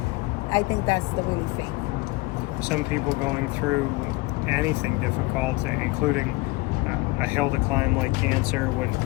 I think that's the really faith. Some people going through anything difficult, including a hill to climb like cancer,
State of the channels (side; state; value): right; quieter; 22.8 dB